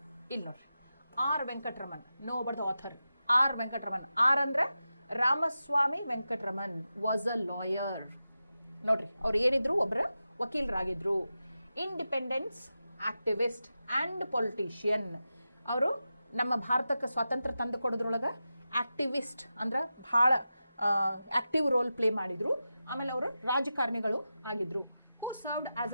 ಇಲ್ಲಿ ನೋಡ್ರಿ, R Venkataraman. No but the author. R Venkataraman. R ಅಂದ್ರೆ Ramaswamy Venkataraman was a lawyer. ನೋಡ್ರಿ, ಅವ್ರು ಏನಿದ್ರು, ಒಬ್ಬರ ವಕೀಲರಾಗಿದ್ರು. Independence activist and politician. ಅವರು ನಮ್ಮ ಭಾರತಕ್ಕೆ ಸ್ವಾತಂತ್ರ್ಯ ತಂದು ಕೊಡೋದ್ರೊಳಗೆ ಆಕ್ಟಿವಿಸ್ಟ್ ಅಂದ್ರೆ ಭಾಳ ಆಕ್ಟಿವ್ ರೋಲ್ ಪ್ಲೇ ಮಾಡಿದ್ರು. ಆಮೇಲೆ ಅವರು ರಾಜಕಾರಣಿಗಳು ಆಗಿದ್ರು. Served as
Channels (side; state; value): both; inverted; correlation -0.92